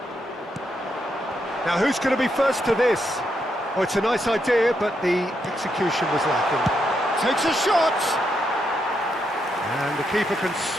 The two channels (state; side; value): normal; both; correlation 0.80